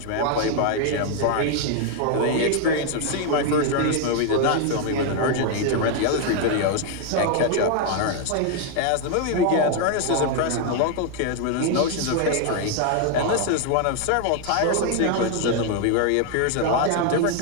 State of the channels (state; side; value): different; both; correlation 0.00